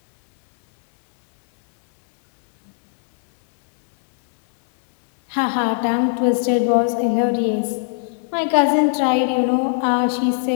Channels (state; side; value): silent; right; 63 dB below the other